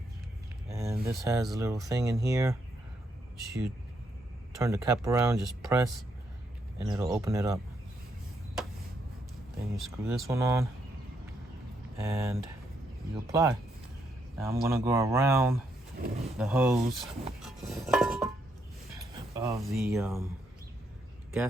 And this has a little thing in here. You turn the cap around, just press, and it'll open it up. Then you screw this one on, and you apply. Now I'm gonna go around the hose of the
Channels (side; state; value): both; normal; correlation 0.77